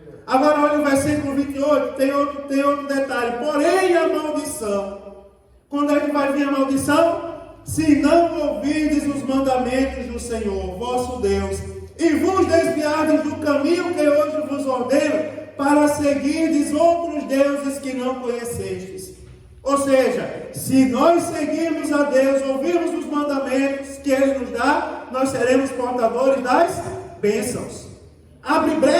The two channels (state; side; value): identical; both; correlation 1.00